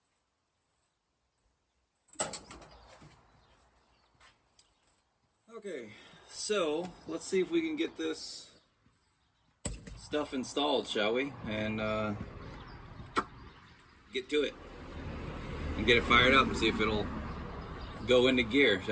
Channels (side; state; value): both; identical; correlation 1.00